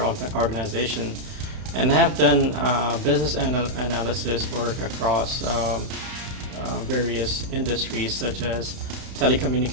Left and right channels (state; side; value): late; left; 31 ms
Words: organization, and have done business analysis work across various industries such as